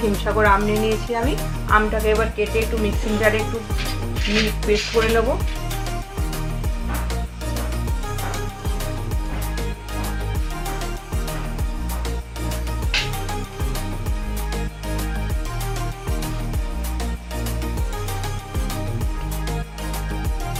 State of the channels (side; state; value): both; identical; correlation 1.00